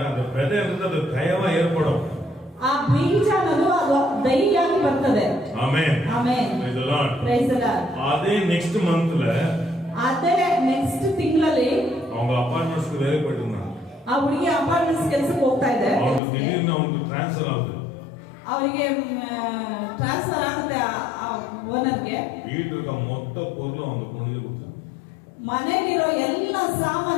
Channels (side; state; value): right; drops out; at 16.2 s